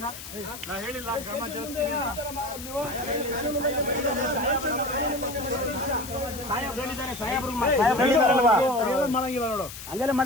ನಾ ಹೇಳಿಲ್ಲ ಕ್ರಮ ಮಾಡಂಗಿಲ್ಲ ನೋಡು, ಹಂಗೆಲ್ಲ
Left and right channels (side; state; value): left; noise; hiss, 12 dB below the sound